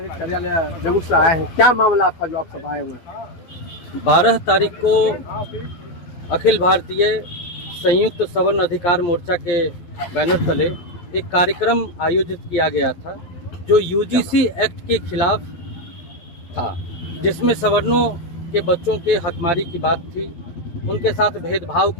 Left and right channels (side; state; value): right; late; 12 ms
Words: है, क्या मामला आपका जो आप सब आए हुए? 12 तारीख को अखिल भारतीय संयुक्त सवर्ण अधिकार मोर्चा के बैनर तले एक कार्यक्रम आयोजित किया गया था जो यूजीसी एक्ट के खिलाफ था, जिसमें सवर्णों के बच्चों के हकमारी की बात थी, उनके साथ भेदभाव